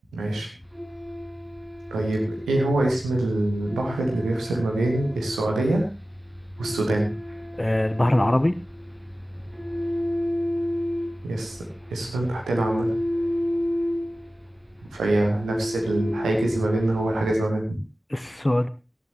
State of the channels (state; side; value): normal; both; correlation 0.95